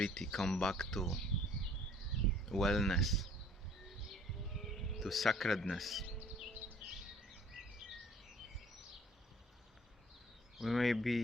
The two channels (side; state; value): both; normal; correlation 0.54